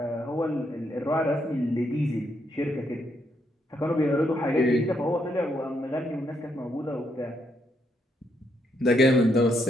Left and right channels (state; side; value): normal; both; correlation 0.76